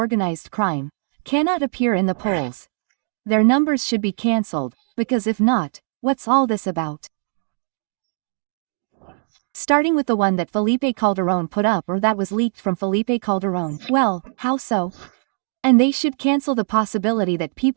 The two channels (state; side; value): silent; left; digital silence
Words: crime, cannot appear in the polls. Their numbers should be cancelled, because if not, what's all this about? Starting with the one that Felipe Calderón put up or that was leaked from Felipe Calderón. Well, how so? And they should cancel the possibility that